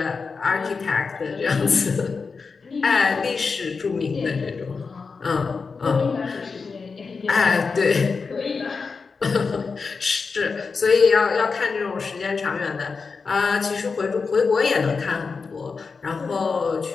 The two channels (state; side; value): quieter; right; 4.8 dB